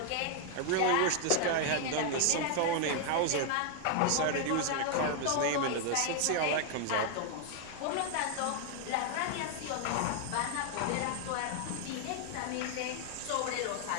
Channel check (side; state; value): both; different; correlation 0.00